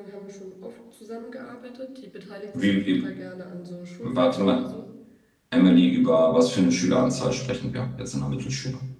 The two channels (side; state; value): both; identical; correlation 1.00